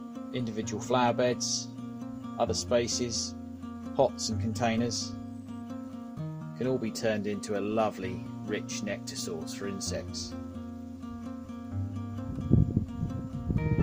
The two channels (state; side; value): identical; both; correlation 1.00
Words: Individual flower beds, other spaces, pots and containers can all be turned into a lovely, rich nectar source for insects.